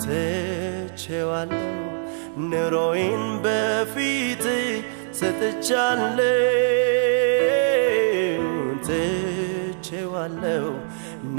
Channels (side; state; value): left; silent; digital silence